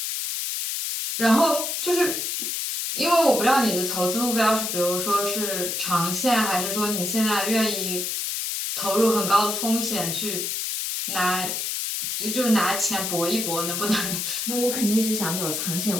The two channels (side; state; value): left; noise; hiss, 2 dB below the sound